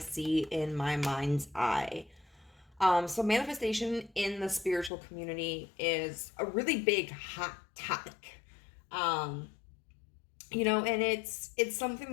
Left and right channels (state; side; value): drops out; right; at 4.9 s